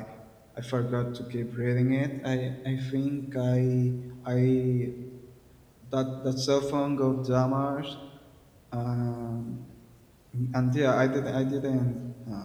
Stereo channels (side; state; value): both; identical; correlation 1.00